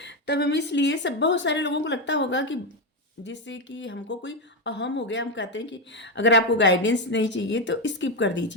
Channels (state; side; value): normal; both; correlation 0.09